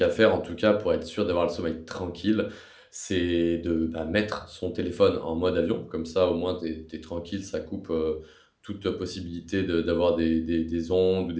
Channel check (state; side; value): identical; both; correlation 1.00